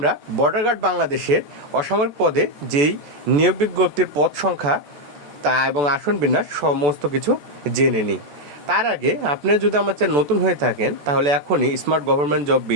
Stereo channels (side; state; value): left; late; 14 ms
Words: বর্ডার গার্ড বাংলাদেশের অসামরিক পদে যেই নিয়োগ বিজ্ঞপ্তির পদ সংখ্যা তা এবং আসন বিন্যাস সমস্ত কিছু জেনে নিই। তার আগে আপনি যদি আমার চ্যানেল নতুন হয়ে থাকেন তাহলে এখনই smart government job